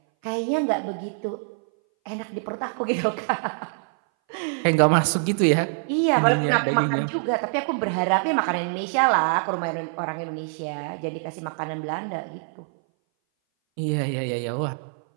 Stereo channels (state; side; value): silent; left; 59 dB below the other